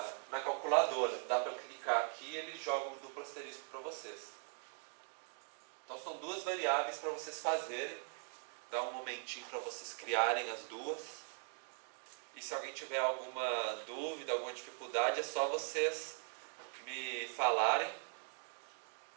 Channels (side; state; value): left; silent; 50 dB below the other